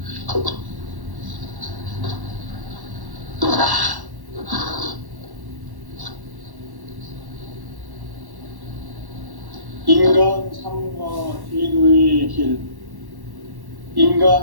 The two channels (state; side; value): late; left; 1.1 ms